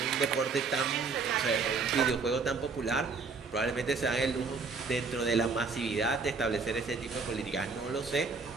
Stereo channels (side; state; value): left; quieter; 4.6 dB